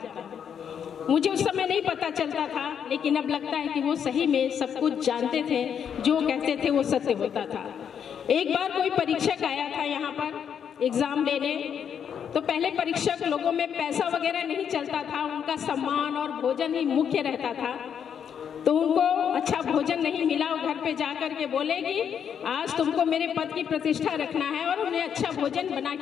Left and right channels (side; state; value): right; quieter; 8.0 dB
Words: हूँ। मुझे उस समय नहीं पता चलता था, लेकिन अब लगता है कि वो सही में सब कुछ जानते थे, जो कहते थे वो सत्य होता था। एक बार कोई परीक्षक आया था यहाँ पर एग्जाम लेने, तो पहले परीक्षक लोगों में पैसा वगैरह नहीं चलता था, उनका सम्मान और भोजन ही मुख्य रहता था। तो उनको अच्छा भोजन नहीं मिला, वो घर पे जाकर के बोले कि आज तुमको मेरे पद की प्रतिष्ठा रखना है और उन्हें अच्छा भोजन बना